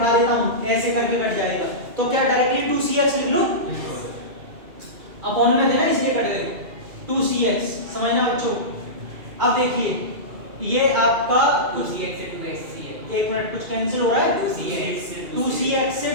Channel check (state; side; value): late; left; 2.4 ms